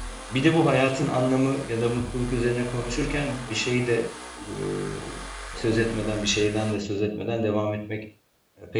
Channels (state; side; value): identical; both; correlation 1.00